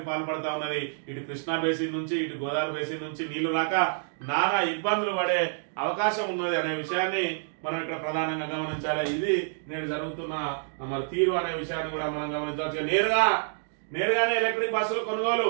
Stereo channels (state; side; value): silent; left; digital silence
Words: పాల్పడతా ఉన్నది. ఇటు కృష్ణా బేసిన్ నుంచి ఇటు గోదావరి బేసిన్ నుంచి నీళ్లు రాక నానా ఇబ్బందులు పడే అవకాశం ఉన్నది అనే విషయాన్ని మనం ఇక్కడ ప్రధానంగా గమనించాలి. ఇది నేడు జరుగుతున్న మరి తీరు అనే విషయాన్ని కూడా మనం గమనించాల్సి. నేరుగానే ఎలక్ట్రిక్ బస్సులు కొనుగోలు